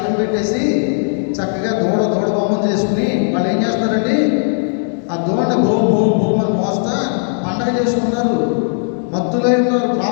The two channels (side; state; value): right; silent; 68 dB below the other